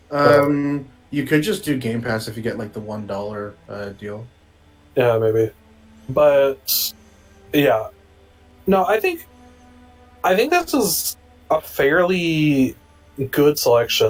You could just do Game Pass if you get like the $1 deal. Yeah, maybe. But yeah. No, I think this is a fairly good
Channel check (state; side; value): identical; both; correlation 1.00